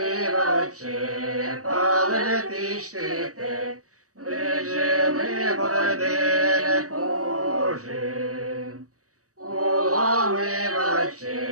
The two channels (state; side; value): late; left; 0.66 ms